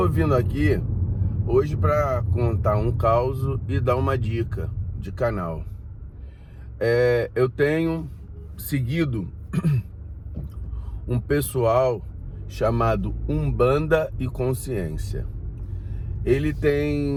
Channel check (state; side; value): identical; both; correlation 1.00